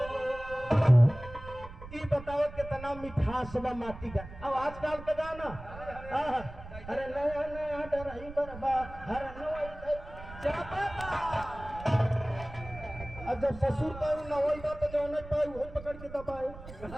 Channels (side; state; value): right; noise; rumble, 14 dB below the sound